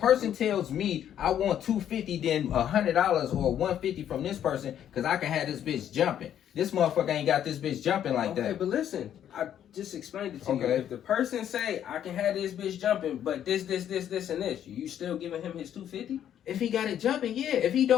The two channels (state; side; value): quieter; right; 10.1 dB